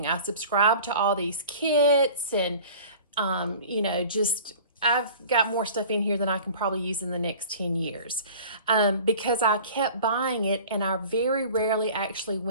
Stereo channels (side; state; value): both; inverted; correlation -0.43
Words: I subscribed to all these kits and, I've got more stuff in here than I can probably use in the next 10 years because I kept buying it, and I very rarely actually